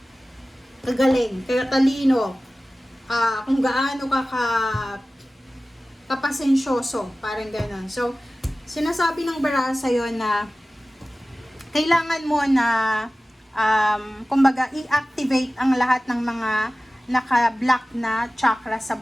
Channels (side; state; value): both; normal; correlation 0.97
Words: kagaling, katalino, kung gaano ka kapasensyoso, parang gano'n. So, sinasabi ng baraso yon na kailangan mo na kumbaga i-activate ang lahat ng mga naka-block na chakra sa